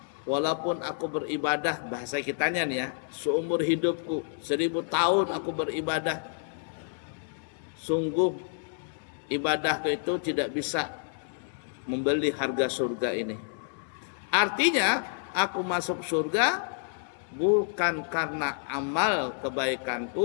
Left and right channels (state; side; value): silent; right; digital silence